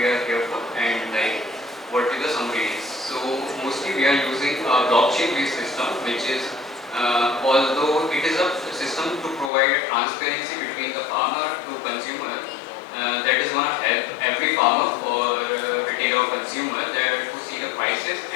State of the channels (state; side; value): drops out; right; at 9.5 s